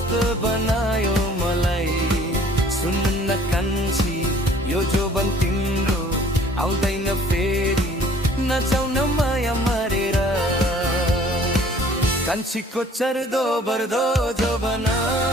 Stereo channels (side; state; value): both; normal; correlation 0.54